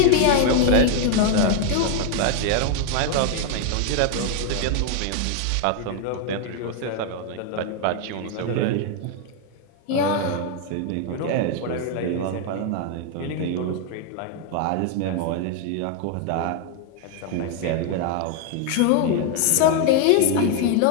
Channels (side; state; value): both; different; correlation 0.00